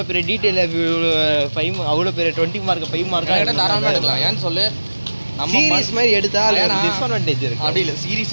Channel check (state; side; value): inverted; both; correlation -1.00